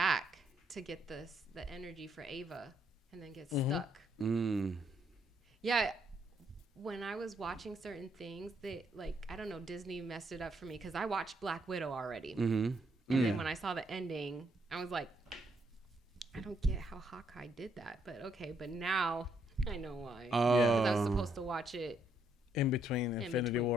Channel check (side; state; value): both; normal; correlation 0.73